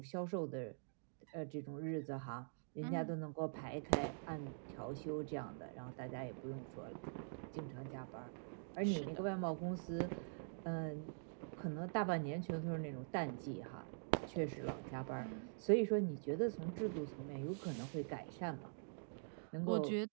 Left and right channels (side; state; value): left; silent; digital silence